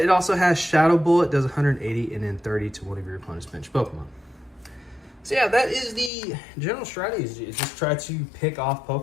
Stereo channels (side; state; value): right; drops out; at 6.1 s